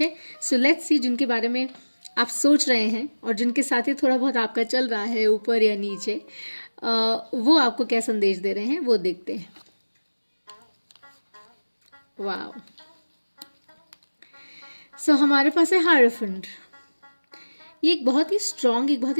सो लेट्स सी जिनके बारे में आप सोच रहे हैं और जिनके साथ ही थोड़ा बहुत आपका चल रहा है ऊपर या नीचे, वो आपको क्या संदेश दे रहे हैं वो देखते हैं. वाओ. सो हमारे पास है हायरोफेंट. ये एक बहुत ही स्ट्रॉन्ग, एक बहुत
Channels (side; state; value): both; inverted; correlation -1.00